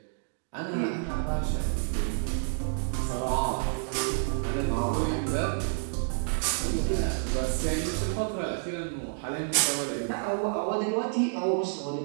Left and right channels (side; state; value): left; silent; digital silence